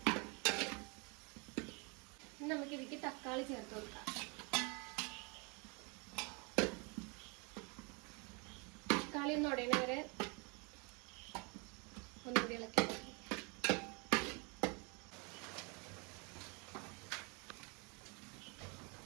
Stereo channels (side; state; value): left; quieter; 31.9 dB